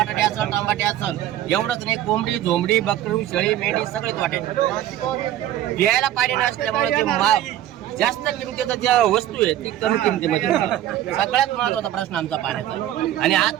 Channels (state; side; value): quieter; left; 12.5 dB